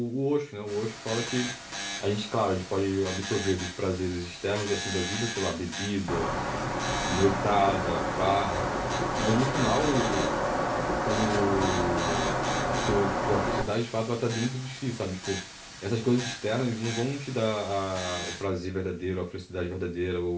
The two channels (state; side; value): identical; both; correlation 1.00